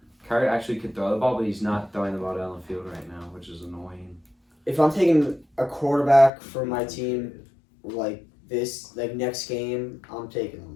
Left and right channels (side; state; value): right; drops out; at 6.3 s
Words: Kyler actually could throw the ball, but he's not throwing the ball down the field right now, which is annoying. If I'm taking a quarterback for my team, like next game, I'm taking